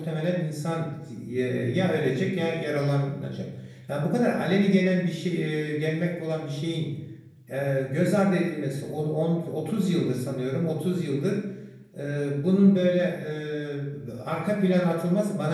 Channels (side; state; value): both; identical; correlation 1.00